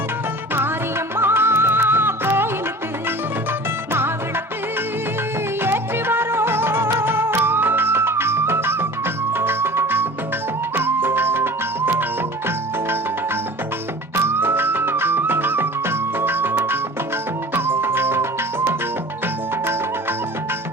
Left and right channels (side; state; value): both; normal; correlation 0.41